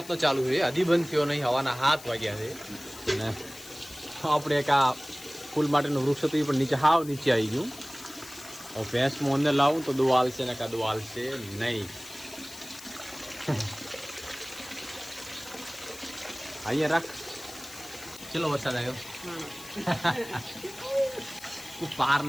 ચાલુ છે, હજી બંધ થયો નહીં. હવાના 7 વાગ્યા છે અને આપણે એક આ ફૂલ માટેનું વૃક્ષ હતું એ પણ નીચે હાવ નીચે આવી ગયું. હવે ભેંસમાં અંદર લાવું તો દો હાલશે ને કાં દો હાલશે નહીં. અહીંયા રાખ. ચલો વરસાદ આવ્યો. પાર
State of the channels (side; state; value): left; noise; hiss, 16 dB below the sound